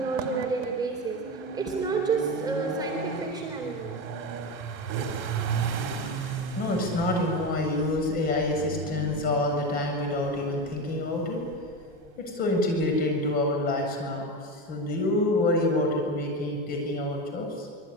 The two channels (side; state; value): both; normal; correlation 0.20